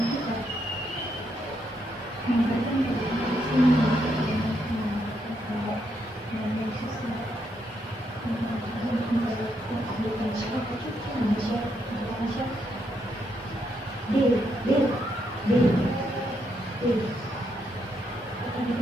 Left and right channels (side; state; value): both; normal; correlation 0.78